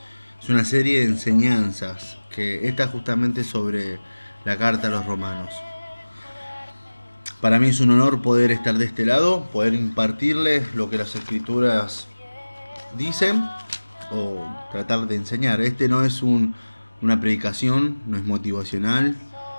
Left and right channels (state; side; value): inverted; both; correlation -1.00